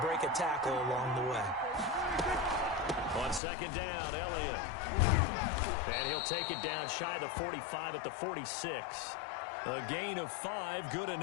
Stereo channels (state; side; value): drops out; right; at 3.4 s